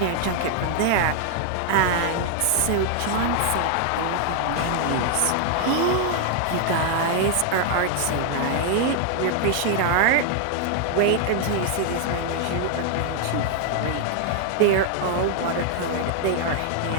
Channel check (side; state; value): both; different; correlation 0.00